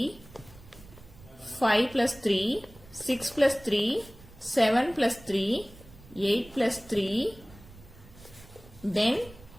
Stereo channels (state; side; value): noise; right; rumble, 21 dB below the sound